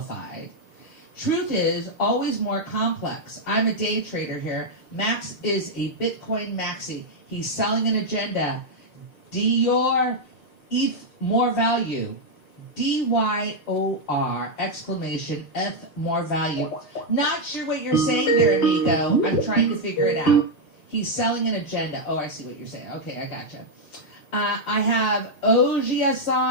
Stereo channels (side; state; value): right; late; 6.6 ms